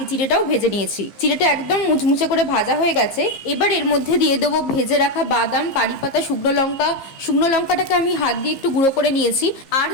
চিড়েটাও ভেজে নিয়েছি। চিড়েটা একদম মুচমুচে করে ভাজা হয়ে গেছে। এবার এর মধ্যে দিয়ে দেবো ভেজে রাখা বাদাম, কারি পাতা, শুকনো লঙ্কা। শুকনো লঙ্কাটাকে আমি হাত দিয়ে একটু গুঁড়ো করে নিয়েছি, আর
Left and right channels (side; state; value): right; late; 15 ms